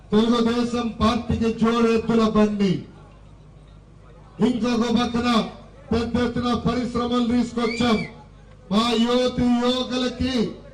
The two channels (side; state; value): both; identical; correlation 1.00